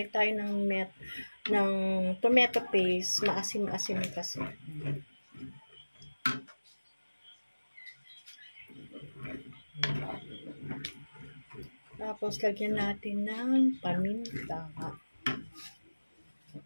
tayo ng tomato paste, maasim-asim kasi. Tapos lagyan natin ng paminta.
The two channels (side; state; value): both; inverted; correlation -1.00